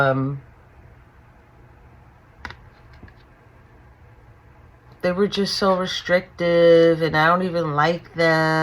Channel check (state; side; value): identical; both; correlation 1.00